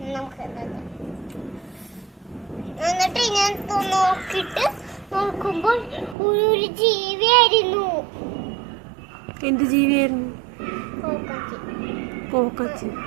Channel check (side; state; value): left; drops out; at 6.2 s